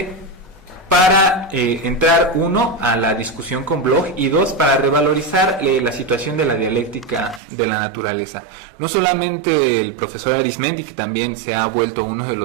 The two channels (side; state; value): left; drops out; at 7.4 s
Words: para entrar, uno, a la discusión con Bloch, y dos, para revalorizar la situación de la dialéctica de la naturaleza. No solamente el profesor Arismendi, que también se ha vuelto uno de